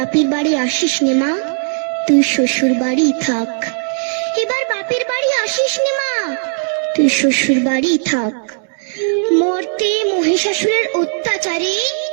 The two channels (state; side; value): silent; left; digital silence